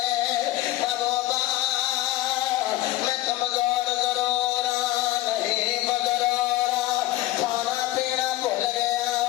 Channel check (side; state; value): right; quieter; 16.3 dB